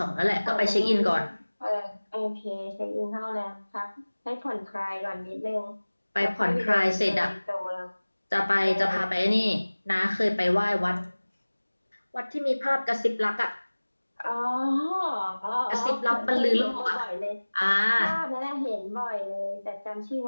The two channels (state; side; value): inverted; both; correlation -1.00